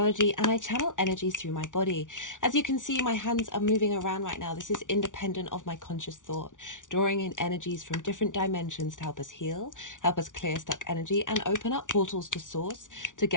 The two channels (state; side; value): late; right; 0.87 ms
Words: and I channel energies through my body. As you can see, my hands are moving around right now. This is independent of my conscious thought, drawing in energies from different dimensions to help us heal, help us clear stuck energy, and open up portals to source to